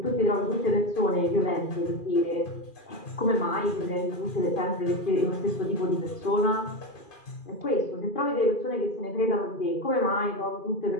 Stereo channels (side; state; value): right; late; 2.5 ms